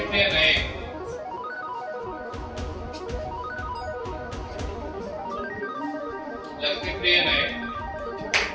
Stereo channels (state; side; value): identical; both; correlation 1.00